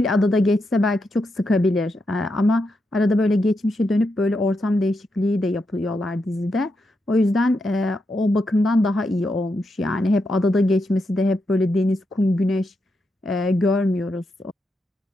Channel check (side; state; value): both; normal; correlation 0.84